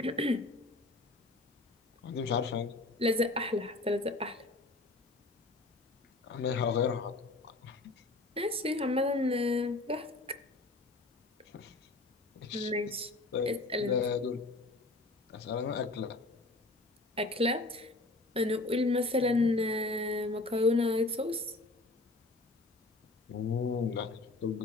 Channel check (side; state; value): right; quieter; 3.0 dB